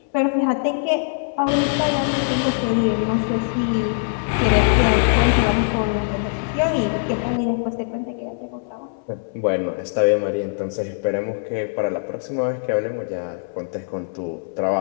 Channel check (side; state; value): right; silent; 64 dB below the other